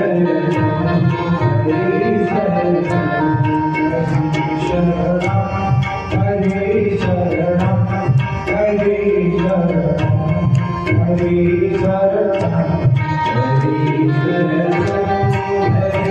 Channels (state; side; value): identical; both; correlation 1.00